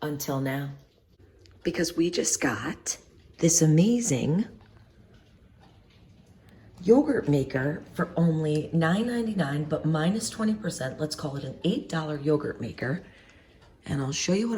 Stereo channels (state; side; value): identical; both; correlation 1.00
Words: until now. Because we just got this amazing yogurt maker for only $9.99, but minus 20%. Let's call it an $8 yogurt maker. And I'll show you